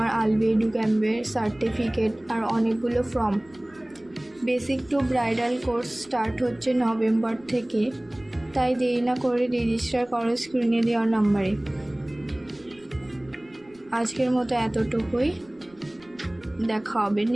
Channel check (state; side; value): noise; right; rumble, 29 dB below the sound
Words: আলবি এডু ক্যাম্পের সার্টিফিকেট আর অনেকগুলো form. Basic to bridal course start হচ্ছে নভেম্বর থেকে, তাই দেরি না করে রেজিস্টার করো স্ক্রিনে দেওয়ার নাম্বারে। আজকের মতো এতটুকুই, দেখা হবে